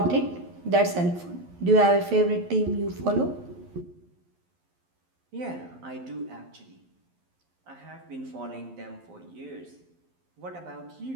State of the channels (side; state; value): left; late; 11 ms